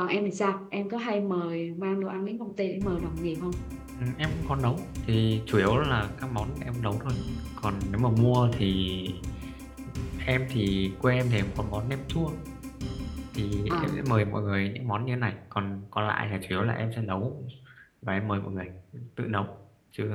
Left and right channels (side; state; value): both; identical; correlation 1.00